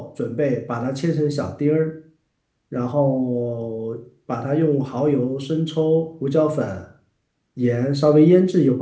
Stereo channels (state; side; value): identical; both; correlation 1.00